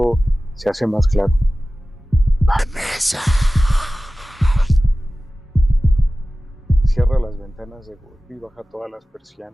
se hace más claro. ¡Vanessa! Cierra las ventanas de golpe y baja todas las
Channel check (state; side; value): normal; both; correlation 0.97